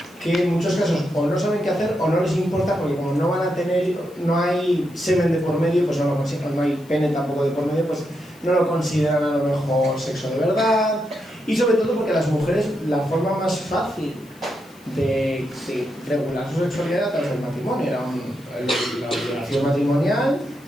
que en muchos casos o no saben qué hacer o no les importa, porque como no van a tener, no hay semen de por medio, pues no hay pene tampoco de por medio, pues no lo consideran a lo mejor sexo de verdad. Y sobre todo porque las mujeres, la forma más fácil de regular su sexualidad era a través del matrimonio, era la obligación matrimonial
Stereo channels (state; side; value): noise; left; hiss, 27 dB below the sound